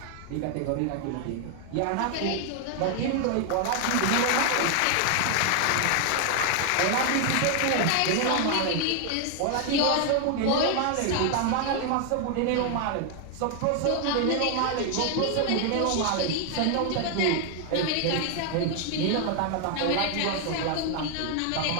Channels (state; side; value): different; both; correlation 0.00